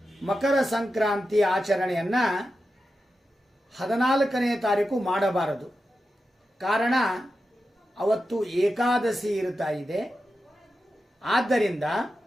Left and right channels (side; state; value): both; normal; correlation 0.90